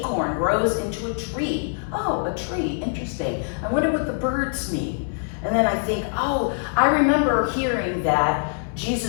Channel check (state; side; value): silent; right; digital silence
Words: grows into a tree. Oh, a tree, interesting. I wonder what the birds mean. And then I think, oh, I remember hearing that